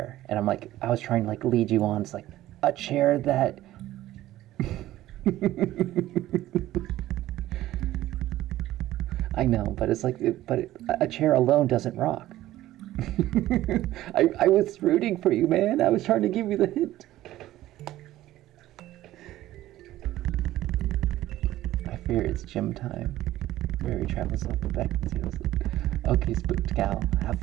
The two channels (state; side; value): quieter; left; 14.9 dB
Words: and I'm like, I was trying to like lead you on. It's like a chair that. I know, but it's like, a chair alone doesn't rock. I was rooting for you, man. I was trying to give you the hint. I fear it's gym time. Fairy travels up the back and sails. Okay, spooked gal, have